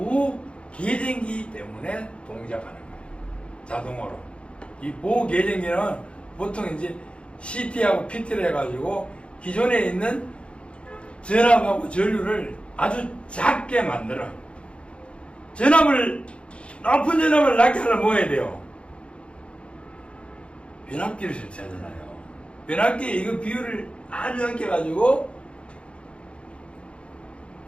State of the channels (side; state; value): right; late; 0.058 ms